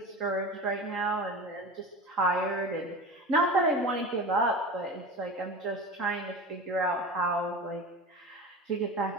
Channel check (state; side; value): normal; both; correlation 0.31